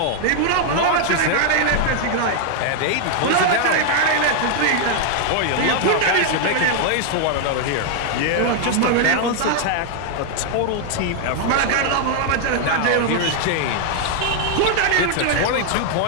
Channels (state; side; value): different; both; correlation 0.00